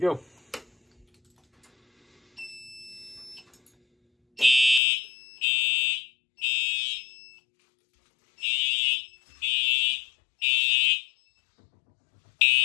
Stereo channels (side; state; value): right; drops out; at 4.8 s